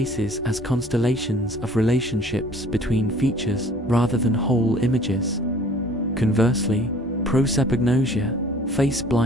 as constellations of relationships between features rather than whole images. Conversely, prosopagnosia, face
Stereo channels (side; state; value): both; normal; correlation 0.52